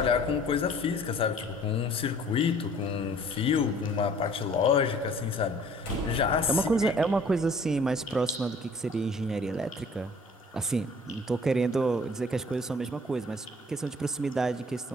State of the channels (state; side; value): normal; both; correlation 0.53